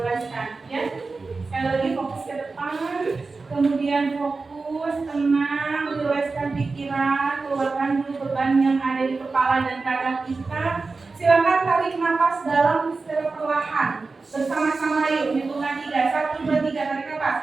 ya. Sekali lagi fokus ke depan, kemudian fokus, tenang, relaxkan pikiran, keluarkan dulu beban yang ada di kepala dan dada kita. Silakan tarik nafas dalam secara perlahan, bersama-sama yuk, hitungan 3, 1, 2, 3, tarik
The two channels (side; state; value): left; quieter; 4.0 dB